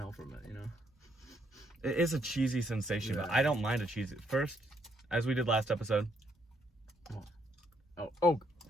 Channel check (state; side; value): normal; both; correlation 0.73